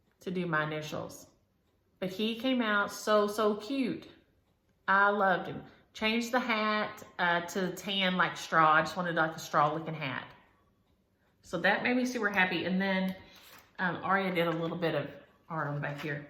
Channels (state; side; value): identical; both; correlation 1.00